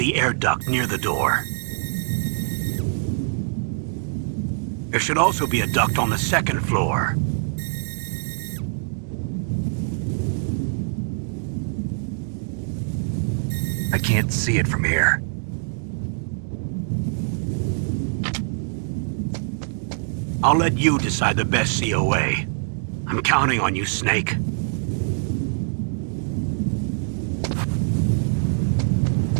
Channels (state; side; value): silent; left; digital silence